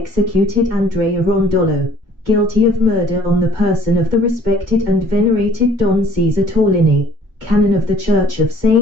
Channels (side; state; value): left; late; 2.1 ms